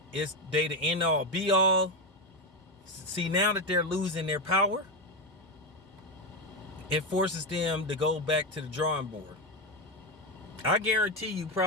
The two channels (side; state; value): both; normal; correlation 0.12